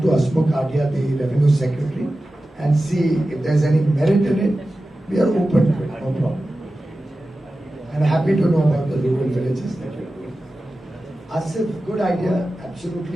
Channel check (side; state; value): both; normal; correlation 0.94